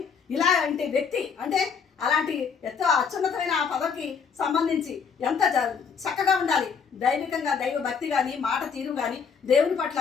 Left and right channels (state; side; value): quieter; right; 6.2 dB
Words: ఇలాంటి వ్యక్తి అంటే అలాంటి ఎంతో అత్యున్నతమైన ఆ పదవికి సంబంధించి ఎంత చక్కగా ఉండాలి, దైవికంగా దైవ భక్తి కానీ మాట తీరు కానీ దేవుని పట్ల